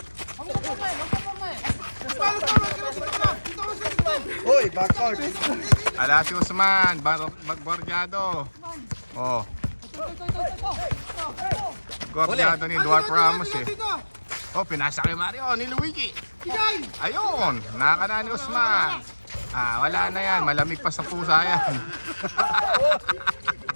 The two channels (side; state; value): both; inverted; correlation -1.00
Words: Huwag ka porma eh. Hoy, backcourt. Ala si Usman. Magborjado. Oh. Gorjado ni Dwarf Ramos eh. Oh, pinasa kay Mario ni Luigi. Ayun. Nakaka ni Usman. Wala na yan. Malamig pa sa pusa yan.